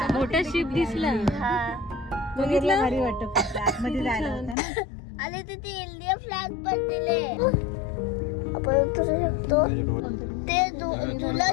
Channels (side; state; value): right; drops out; at 4.5 s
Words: मोठा शिप दिसला. बघितलं भारी वाटत. आतमध्ये जायला होतं ना. आले तिथे इंडिया फ्लॅग पण दिले. आपण उतरू शकतो. ते जुना